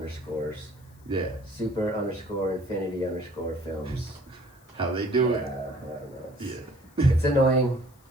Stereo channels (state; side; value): noise; left; hiss, 29 dB below the sound